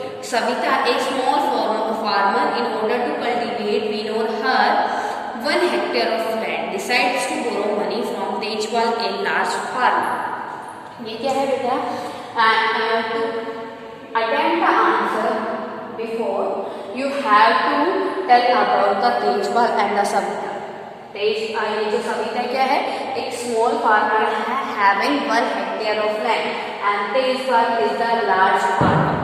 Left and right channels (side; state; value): both; identical; correlation 1.00